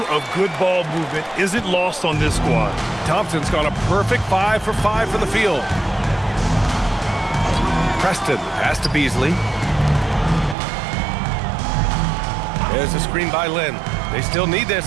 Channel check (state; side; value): drops out; left; at 10.6 s